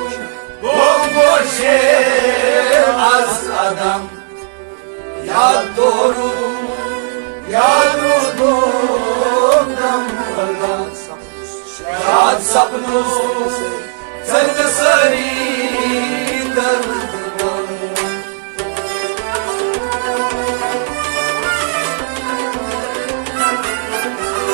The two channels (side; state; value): left; silent; digital silence